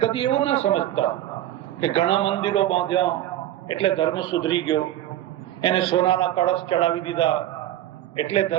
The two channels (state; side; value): quieter; left; 13.2 dB